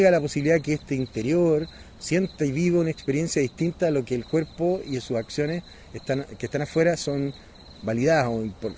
la posibilidad que este interior sienta y viva una experiencia distinta a lo que el cuerpo y sus acciones que están afuera son validadas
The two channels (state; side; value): identical; both; correlation 1.00